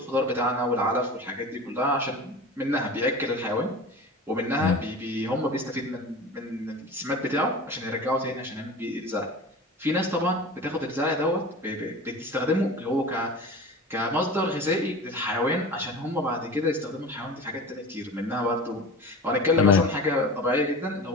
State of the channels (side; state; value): both; normal; correlation 0.34